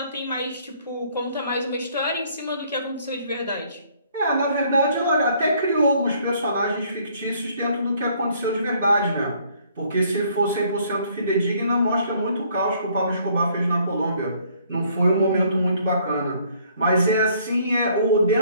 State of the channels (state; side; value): inverted; both; correlation -0.63